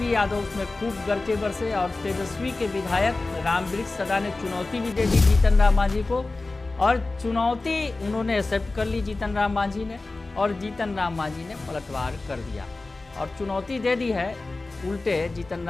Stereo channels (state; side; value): quieter; right; 3.3 dB